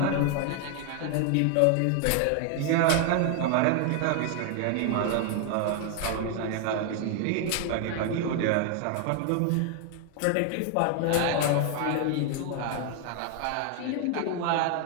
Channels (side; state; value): both; different; correlation 0.00